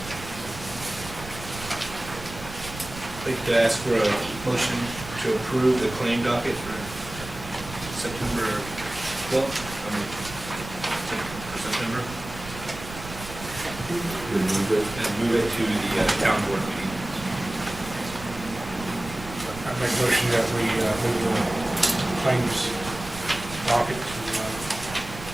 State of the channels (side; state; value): right; noise; rumble, 13 dB below the sound